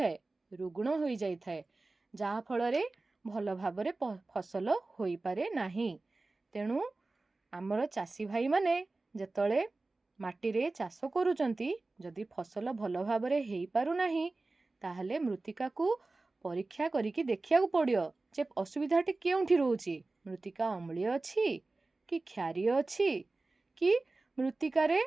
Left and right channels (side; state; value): left; quieter; 3.3 dB